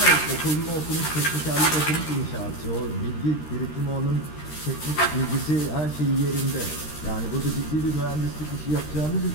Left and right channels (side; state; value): right; late; 13 ms